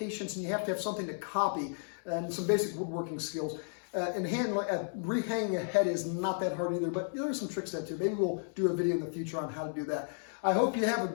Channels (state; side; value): silent; right; digital silence